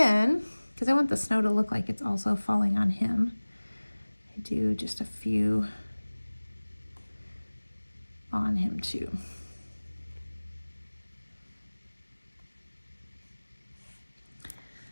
because I want the snow to look like it's also falling on him, I do just a few on him too.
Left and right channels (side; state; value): both; inverted; correlation -1.00